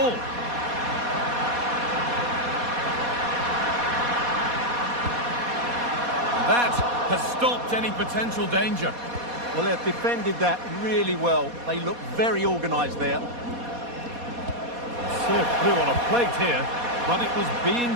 That has stopped any potential danger. Well, they've defended that really well. They look very organised there. Serve through on a plate here, but it was being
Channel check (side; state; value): left; late; 4.2 ms